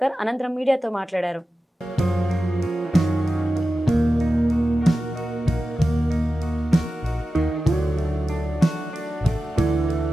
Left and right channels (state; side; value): normal; both; correlation 0.93